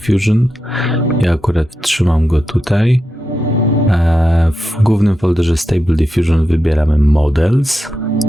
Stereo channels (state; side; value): normal; both; correlation 0.88